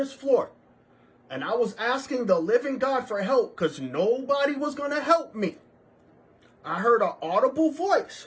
floor, and I was asking the living God for help because nobody was going to help me, I heard an audible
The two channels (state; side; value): identical; both; correlation 1.00